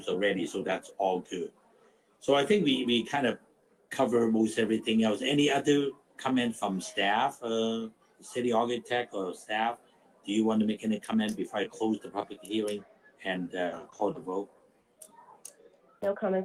already, so that's all good. So I think we kind of cover most everything else. Any other comment from staff, city architect or staff? Do you want to make any comment before I close the public hearing and call the vote? No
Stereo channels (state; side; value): identical; both; correlation 1.00